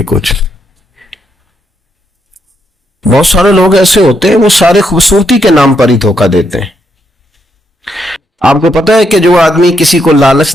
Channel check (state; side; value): normal; both; correlation 0.78